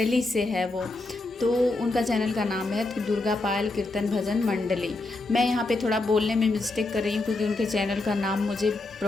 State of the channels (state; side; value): quieter; right; 3.1 dB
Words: से है वो। तो उनका चैनल का नाम है दुर्गा पायल कीर्तन भजन मंडली। मैं यहाँ पे थोड़ा बोलने में मिस्टेक कर रही हूँ, क्योंकि उनके चैनल का नाम मुझे